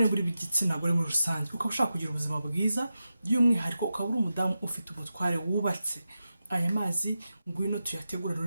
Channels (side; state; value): both; inverted; correlation -0.91